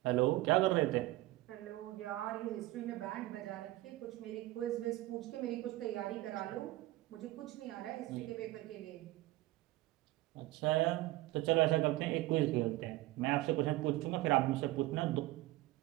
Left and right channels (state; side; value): quieter; left; 17.7 dB